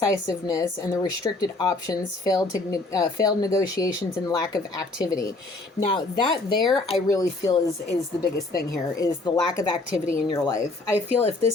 and the restricted options, failed negotiations, and lack of activity. Now, that there, I really feel is the biggest thing here, is the lack of activity in your life. I feel if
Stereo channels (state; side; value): quieter; right; 3.1 dB